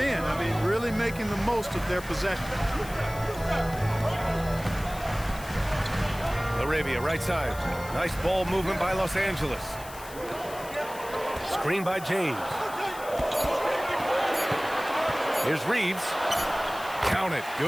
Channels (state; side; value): noise; left; hiss, 16 dB below the sound